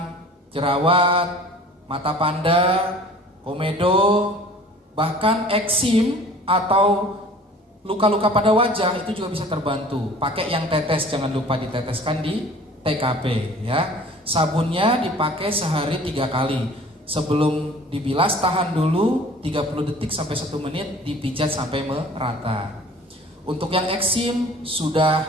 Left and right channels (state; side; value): normal; both; correlation 0.47